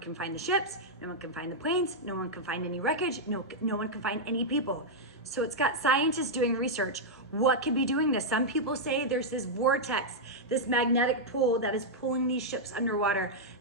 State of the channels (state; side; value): normal; both; correlation -0.05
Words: find the ships, no one can find the planes, no one can find any wreckage, no one can find any people. So it's got scientists doing research. What could be doing this? Some people say there's this vortex, this magnetic pull that is pulling these ships underwater.